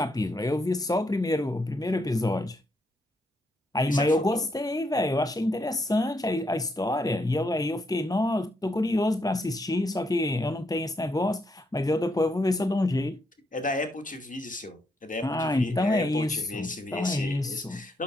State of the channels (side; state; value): both; normal; correlation 0.78